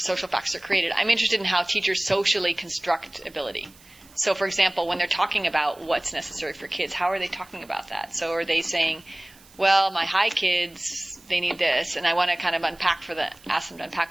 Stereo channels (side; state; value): right; noise; hiss, 25 dB below the sound